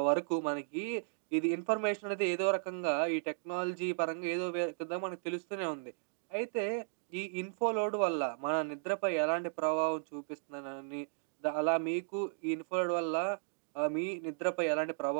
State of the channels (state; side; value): silent; left; digital silence